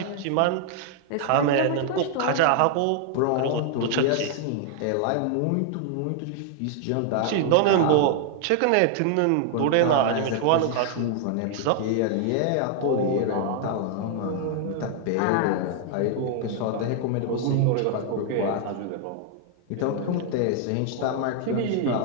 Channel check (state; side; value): different; both; correlation 0.00